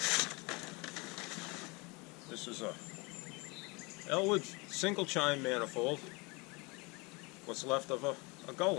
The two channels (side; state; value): right; quieter; 27.2 dB